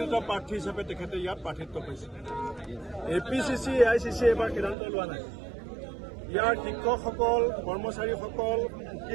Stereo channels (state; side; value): drops out; left; at 4.8 s